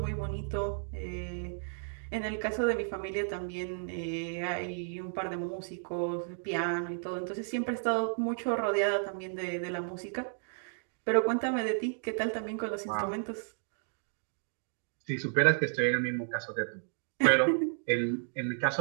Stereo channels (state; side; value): silent; left; digital silence